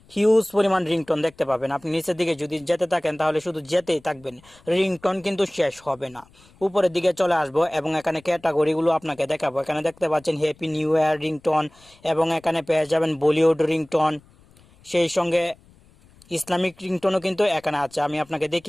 হিউজ পরিমাণ রিংটোন দেখতে পাবেন। আপনি নিচের দিকে যদি যেতে থাকেন তাহলে শুধু যেতেই থাকবেন, রিংটোন কিন্তু শেষ হবে না। উপরের দিকে চলে আসবো এবং এখানে ক্যাটাগরিগুলো আপনাকে দেখাবো। এখানে দেখতে পাচ্ছেন হ্যাপি নিউ ইয়ার রিংটোন, এবং এখানে পেয়ে যাবেন বলিউড রিংটোন, সেই সঙ্গে ইসলামিক রিংটোনও কিন্তু এখানে আছে। আমি আপনাকে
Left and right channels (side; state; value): left; noise; rumble, 28 dB below the sound